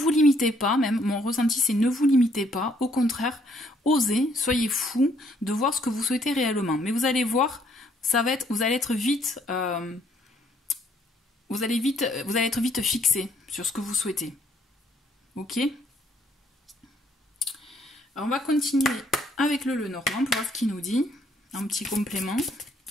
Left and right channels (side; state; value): both; normal; correlation 0.67